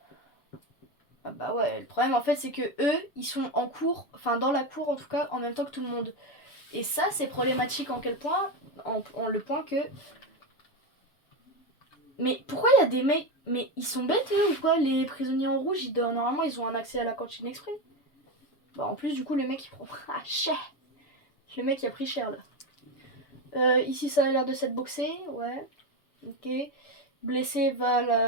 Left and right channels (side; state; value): right; late; 6.9 ms